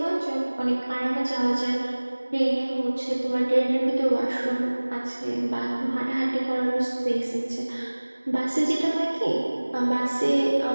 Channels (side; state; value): both; inverted; correlation -1.00